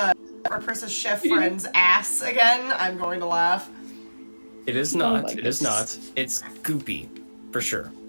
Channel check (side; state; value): both; inverted; correlation -1.00